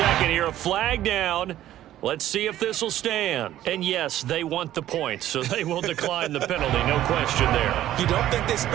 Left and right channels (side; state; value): left; quieter; 13.1 dB